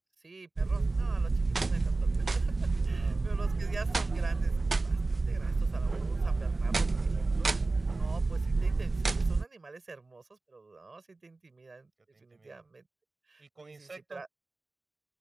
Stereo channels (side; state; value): left; quieter; 3.3 dB